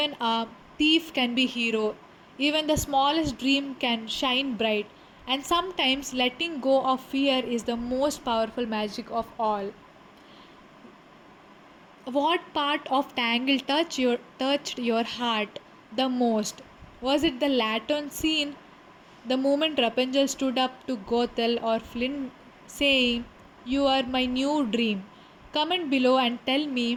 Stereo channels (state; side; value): identical; both; correlation 1.00